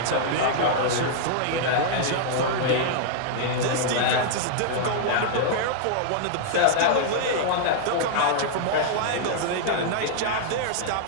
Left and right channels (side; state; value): both; different; correlation -0.01